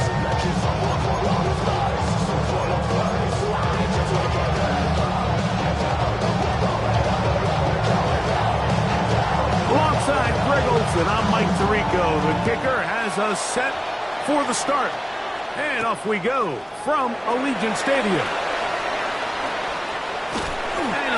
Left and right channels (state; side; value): identical; both; correlation 1.00